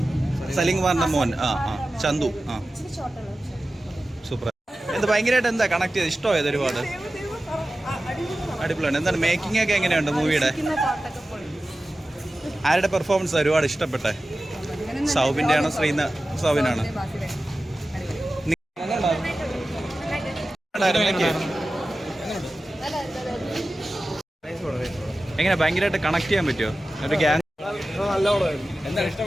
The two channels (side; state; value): both; normal; correlation 0.95